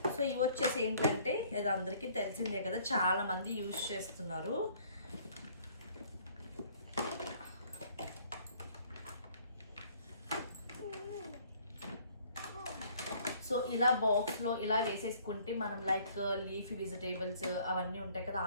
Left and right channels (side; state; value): both; inverted; correlation -0.58